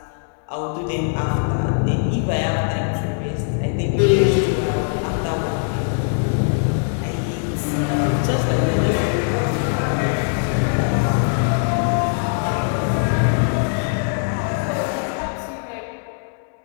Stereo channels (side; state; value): right; silent; digital silence